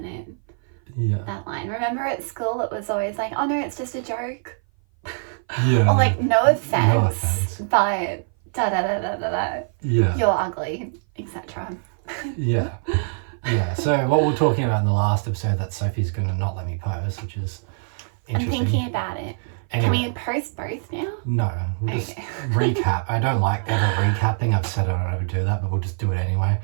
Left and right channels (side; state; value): left; silent; 57 dB below the other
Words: it? Yeah. That line. Remember at school it was always like, oh no, it's just a joke. Yeah. Or like, no offense. But da-da-da-da-da-da. Yeah. You're ugly, etc. Yeah. Yeah, so what we were talking about in the last episode that Sophie's going to not let me post, which is interesting. I'm thinking about it. Anyway, Can we post both now? No, we'll just recap. I don't like ever recapping. I've said I don't ever do that, but we'll just do it anyway.